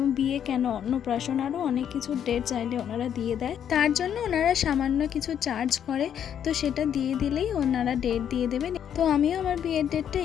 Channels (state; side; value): quieter; right; 9.1 dB